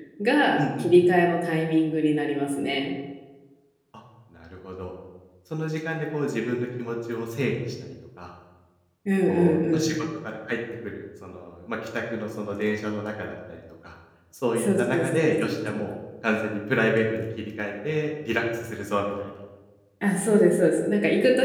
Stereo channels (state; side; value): identical; both; correlation 1.00